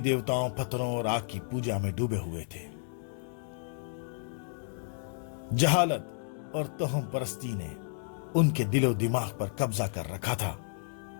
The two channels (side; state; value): right; silent; digital silence